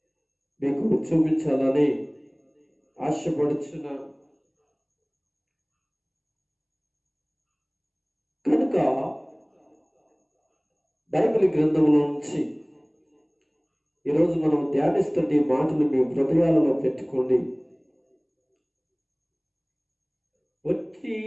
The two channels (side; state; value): both; identical; correlation 1.00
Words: మీకు చూపించాలని ఆశపడుచున్నాను. కనుక బైబిల్ గ్రంథంలో నుంచి ఈరోజు మనం ధ్యానిస్తున్న ఈ మాటలు మీ హృదయాలలో పెట్టుకోండి. వచ్చి